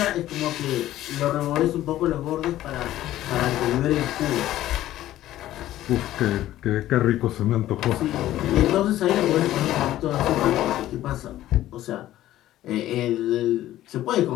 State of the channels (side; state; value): right; quieter; 14.0 dB